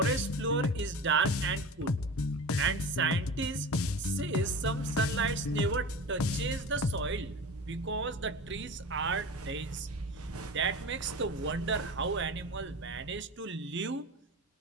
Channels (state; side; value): normal; both; correlation 0.32